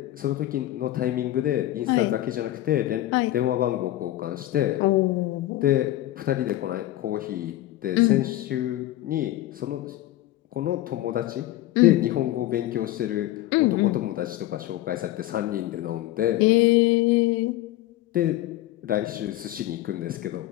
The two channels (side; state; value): right; quieter; 15.1 dB